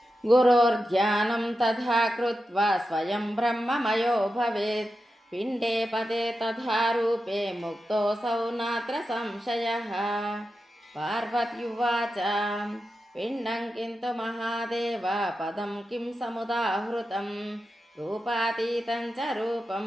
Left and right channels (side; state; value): both; normal; correlation 0.90